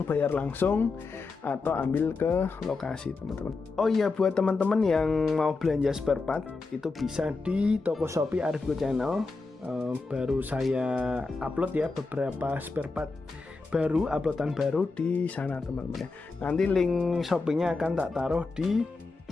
bayar langsung atau ambil ke lokasi teman-teman. Oh iya, buat teman-teman yang mau belanja spare part itu bisa di toko Shopee Arifgo Channel. Baru saya upload ya beberapa spare part baru, uploadan baru di sana teman-teman ya. Nanti link Shopee-nya akan tak taruh di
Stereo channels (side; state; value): right; quieter; 3.9 dB